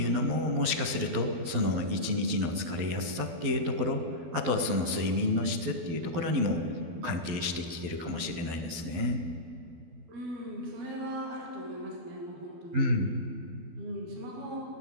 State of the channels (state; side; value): late; left; 12 ms